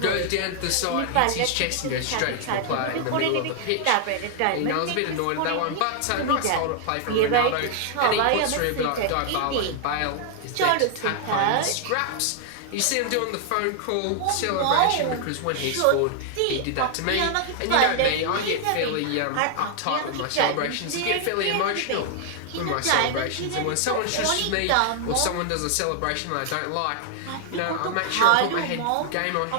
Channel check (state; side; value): different; both; correlation 0.00